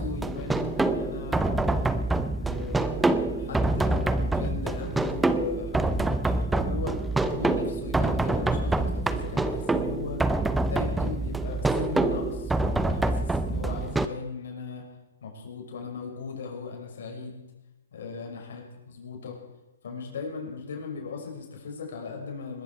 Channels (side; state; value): both; normal; correlation 0.70